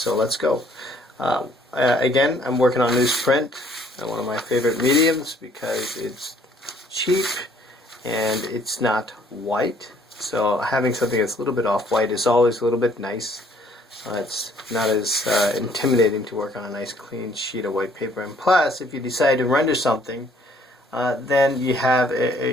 let's go. Again, I'm working on newsprint, one of my favorite mediums because it's cheap and it's not white. So having something that's a little bit off-white is always a little bit nice. It's not as intimidating to work on a nice clean sheet of white paper. And plus, if you decide to render something, then you have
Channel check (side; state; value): both; normal; correlation 0.62